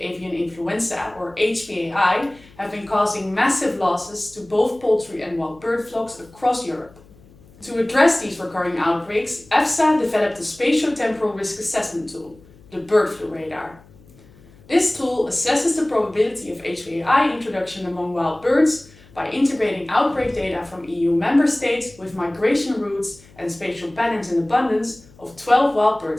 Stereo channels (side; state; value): left; noise; hum, 25 dB below the sound